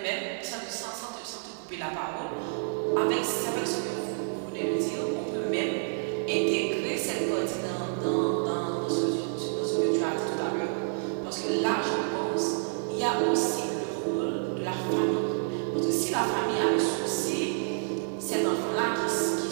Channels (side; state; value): left; silent; 59 dB below the other